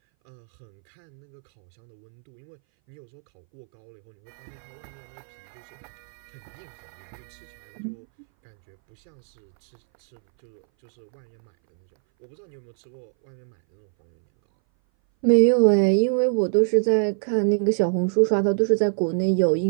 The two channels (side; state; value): left; silent; 60 dB below the other